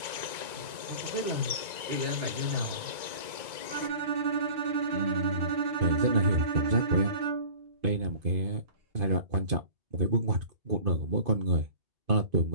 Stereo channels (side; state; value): left; late; 2.2 ms